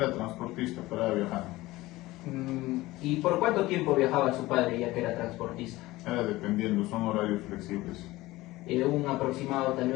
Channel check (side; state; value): right; quieter; 18.7 dB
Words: transportista para viajar. ¿Y por cuánto tiempo viajaba su padre ya que era transportista? Era dependiendo, son horarios flexibles. ¿Un aproximado tal